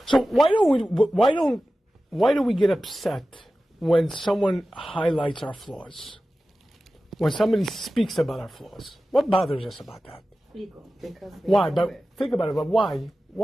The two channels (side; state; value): both; normal; correlation 0.95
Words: So why do we get upset when someone highlights our flaws? When somebody speaks about our flaws? What bothers us about that? Ego. Why? But think about it. But why?